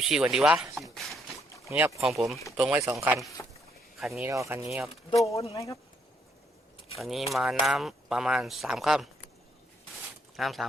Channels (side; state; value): both; normal; correlation 0.72